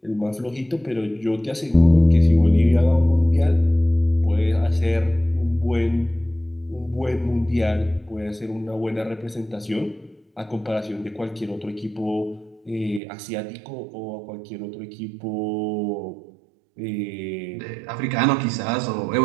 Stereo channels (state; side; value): drops out; left; at 13.0 s